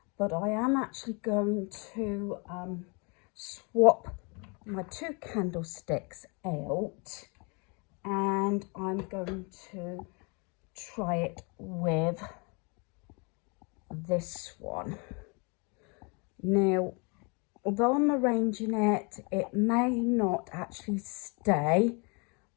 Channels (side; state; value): right; quieter; 32.1 dB